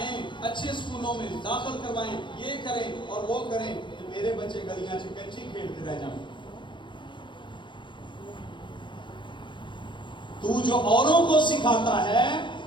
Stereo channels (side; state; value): right; late; 0.23 ms